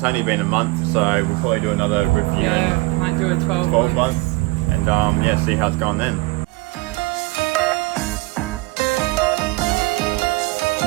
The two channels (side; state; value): left; quieter; 23.0 dB